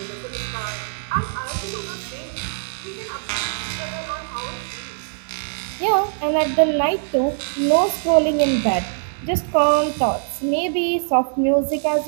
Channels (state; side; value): silent; left; digital silence